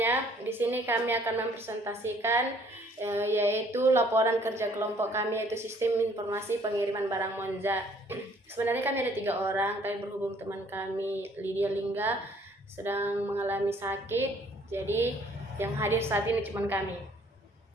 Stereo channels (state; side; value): normal; both; correlation 0.60